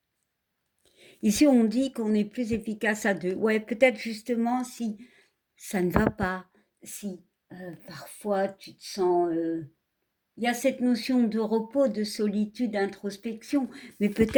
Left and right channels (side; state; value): both; identical; correlation 1.00